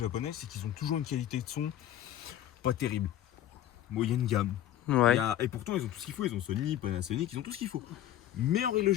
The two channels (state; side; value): quieter; right; 12.2 dB